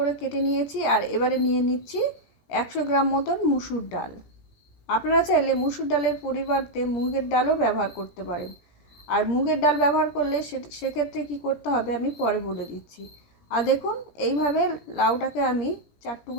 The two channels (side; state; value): right; late; 17 ms